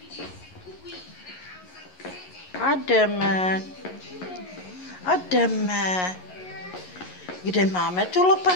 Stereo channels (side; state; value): right; late; 11 ms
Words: A jdeme. A jdeme. Kde máme tu